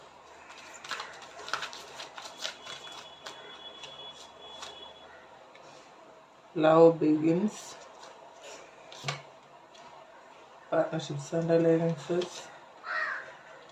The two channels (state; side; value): identical; both; correlation 1.00